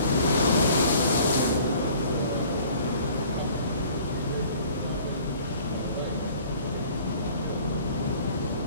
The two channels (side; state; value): both; inverted; correlation -0.52